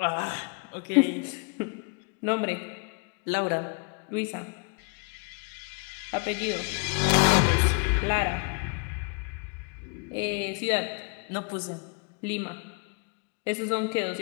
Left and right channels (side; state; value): right; quieter; 34.9 dB